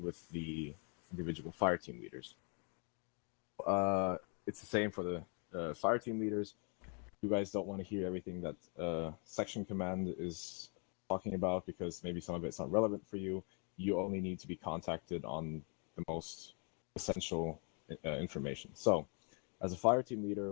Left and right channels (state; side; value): quieter; right; 39.0 dB